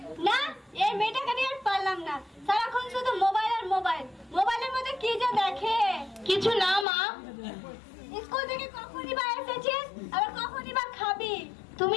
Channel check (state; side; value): drops out; right; at 6.9 s